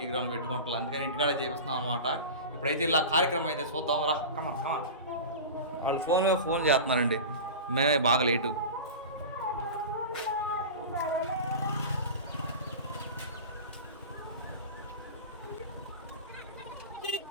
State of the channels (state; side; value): inverted; both; correlation -0.30